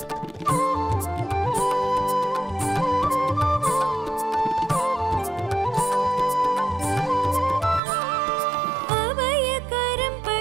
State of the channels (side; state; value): left; drops out; at 7.8 s